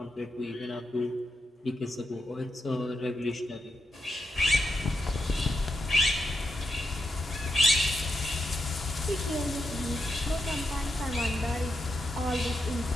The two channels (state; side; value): normal; both; correlation 0.84